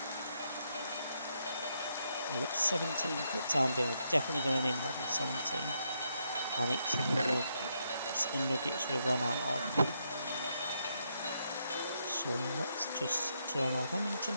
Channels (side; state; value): both; inverted; correlation -0.78